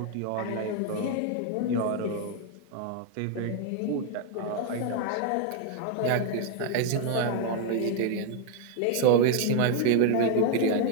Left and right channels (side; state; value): both; different; correlation 0.00